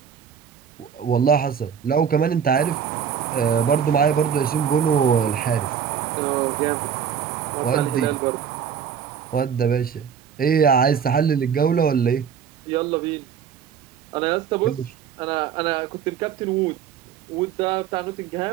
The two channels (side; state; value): left; quieter; 7.8 dB